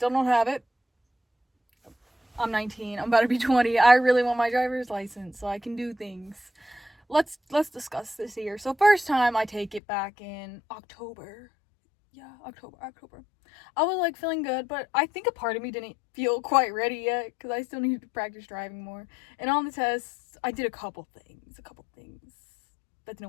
don't have it. I'm 19. I'm about to be 20. I really want my driver's license so I can do things. Let's discuss this here. So first time I take it back in October. Yeah, October. I was like feeling good, but I think a part of me didn't feel quite ready yet because I still needed to practice driving more. And on the tests, I did a couple things that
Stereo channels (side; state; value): right; drops out; at 9.8 s